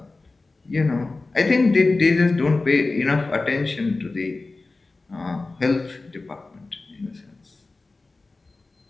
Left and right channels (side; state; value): right; quieter; 3.5 dB